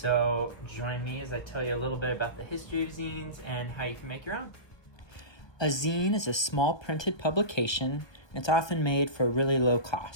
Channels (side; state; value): right; late; 1.2 ms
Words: join me as I tell you a little bit about the history of zines and how you can make your own. A zine is a small printed publication. It's often made for a really low